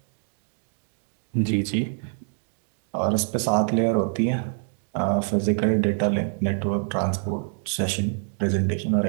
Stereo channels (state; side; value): silent; left; 61 dB below the other